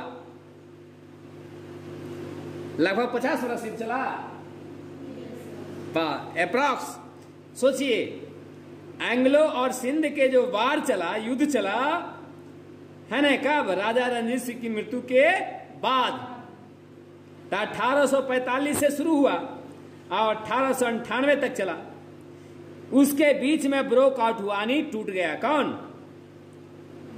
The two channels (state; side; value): identical; both; correlation 1.00